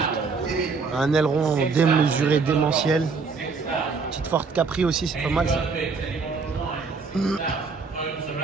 Un aileron démesuré, démentiel. Petite Ford Capri aussi, c'est pas mal ça. Une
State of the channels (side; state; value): left; quieter; 4.7 dB